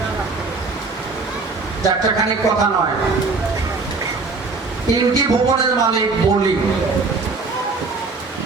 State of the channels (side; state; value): left; quieter; 4.0 dB